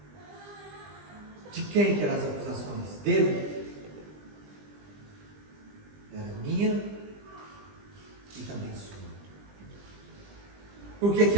De quem que eram as acusações? Dele? Era minha e também sua. Por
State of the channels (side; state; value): left; late; 20 ms